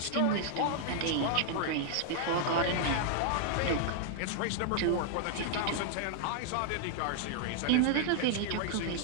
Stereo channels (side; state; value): both; different; correlation -0.01